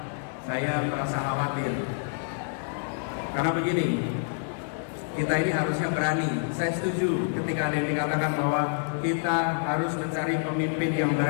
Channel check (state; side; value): silent; right; digital silence